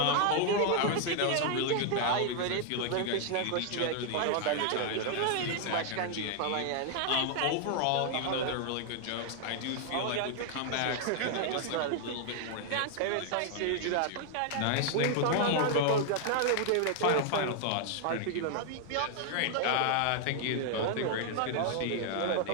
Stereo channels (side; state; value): both; different; correlation 0.00